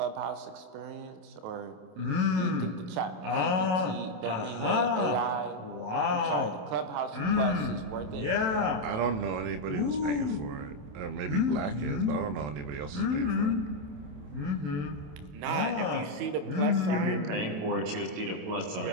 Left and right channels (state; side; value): late; left; 28 ms